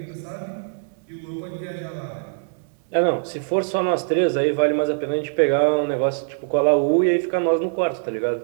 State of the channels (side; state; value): left; silent; 64 dB below the other